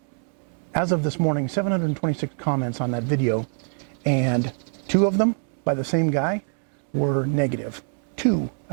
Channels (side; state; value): left; silent; 57 dB below the other